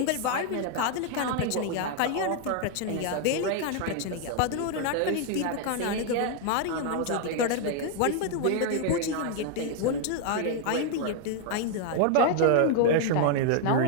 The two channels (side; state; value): both; different; correlation 0.00